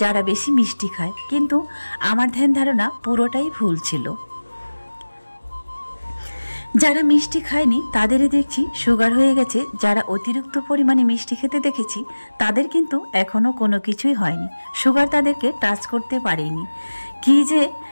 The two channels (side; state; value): both; inverted; correlation -1.00